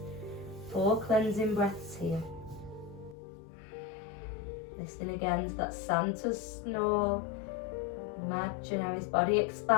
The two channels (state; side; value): drops out; right; at 3.2 s